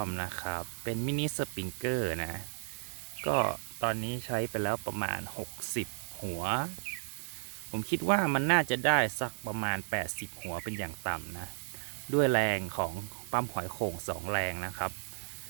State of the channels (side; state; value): left; silent; 55 dB below the other